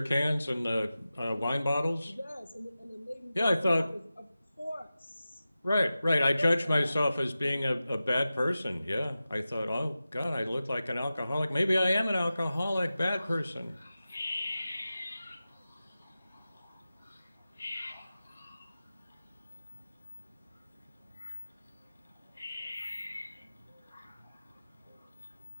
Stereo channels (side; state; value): both; inverted; correlation -0.94